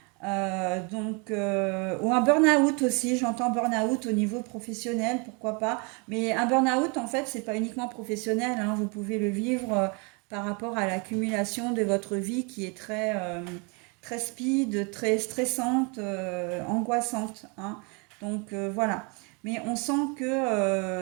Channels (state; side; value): quieter; left; 32.6 dB